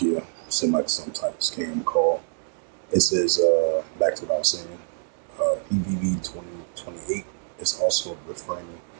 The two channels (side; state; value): left; silent; 61 dB below the other